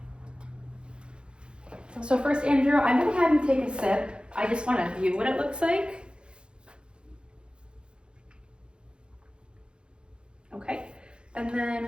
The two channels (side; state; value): left; late; 0.054 ms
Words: So first, Andrew, I'm going to have you take a sip. I just want to view what it looks like. Okay, and